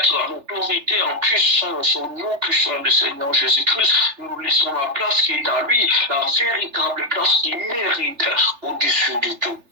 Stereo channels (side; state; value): left; late; 3.4 ms